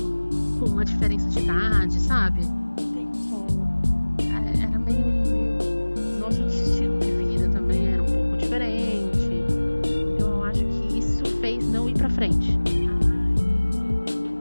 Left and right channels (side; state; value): both; inverted; correlation -1.00